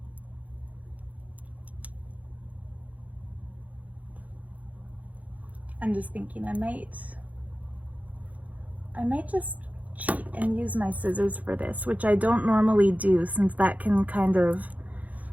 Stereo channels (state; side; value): late; left; 0.074 ms